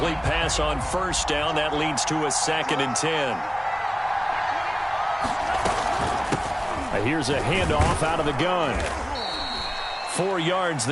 pass on 1st down. That leads to a 2nd and 10. Here's a handoff out of the gun. 4 yards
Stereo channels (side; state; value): both; identical; correlation 1.00